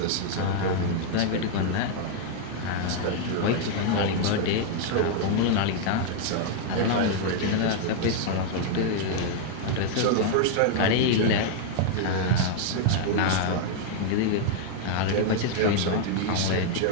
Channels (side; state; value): both; different; correlation 0.00